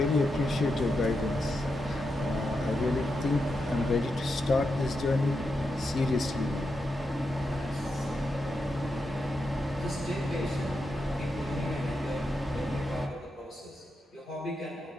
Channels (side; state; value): both; normal; correlation 0.86